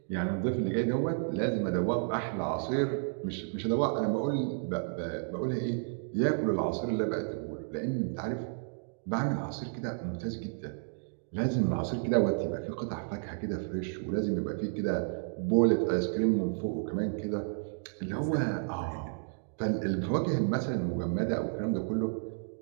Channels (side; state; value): left; silent; digital silence